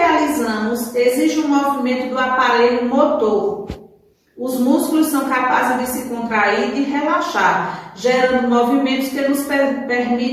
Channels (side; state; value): both; identical; correlation 1.00